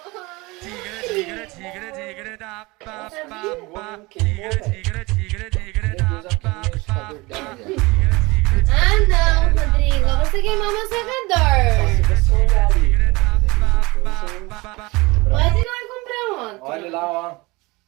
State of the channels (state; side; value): quieter; left; 23.5 dB